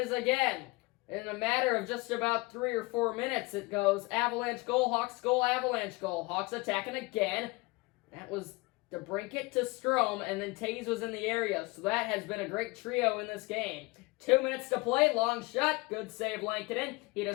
is again. In a matter of just about 3 or 4 minutes, it goes Avalanche goal, Hawks goal, Avalanche goal. Hawks attacking again. That was DeBrincat to Strome, and then Tays was in the area. So that has been a great trio in this game. 2 minutes to play, long shot, good save Lankinen. He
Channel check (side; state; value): right; quieter; 24.5 dB